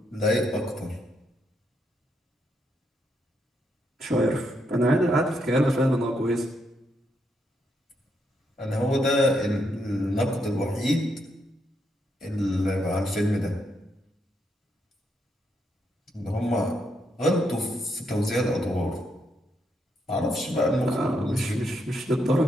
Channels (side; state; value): both; normal; correlation 0.78